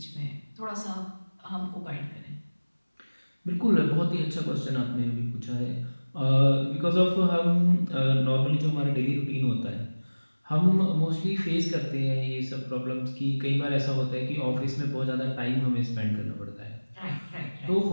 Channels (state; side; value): inverted; both; correlation -1.00